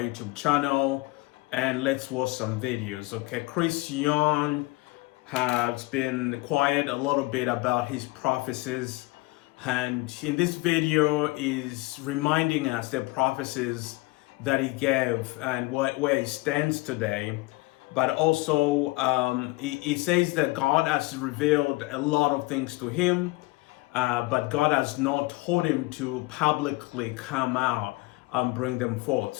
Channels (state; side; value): quieter; right; 22.5 dB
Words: YouTube channel, and let's watch some videos. Okay, Chris Yoon has been quiet a little bit about his prophecies, and in this video is reminding us the prophecies that he gave and where he stands today. But also he says that God has revealed a lot of things to him, but God has not told him to publicly come out and bring them forth.